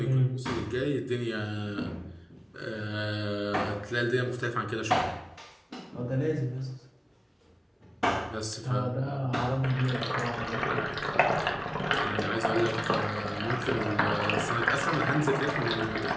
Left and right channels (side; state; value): both; identical; correlation 1.00